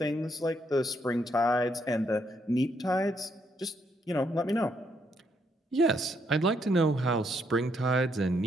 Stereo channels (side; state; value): both; normal; correlation 0.74